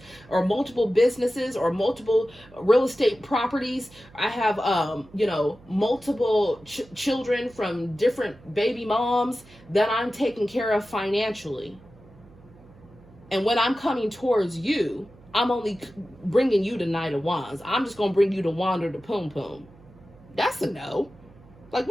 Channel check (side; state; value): right; noise; hum, 24 dB below the sound